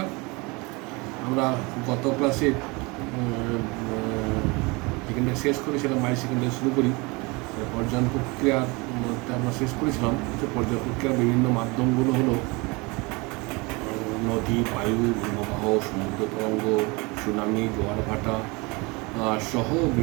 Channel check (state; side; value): quieter; left; 26.4 dB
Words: আমরা গত ক্লাসে যেখানে শেষ করেছিলাম মাই সেকেন্ডারি শুরু করি, পর্যায়ন প্রক্রিয়ার মধ্যে আমরা শেষ করেছিলাম যে পর্যায় প্রক্রিয়ার বিভিন্ন মাধ্যমগুলো হলো নদী, বায়ু, হিমবাহ, সমুদ্র তরঙ্গ, সুনামি, জোয়ার ভাটা সহ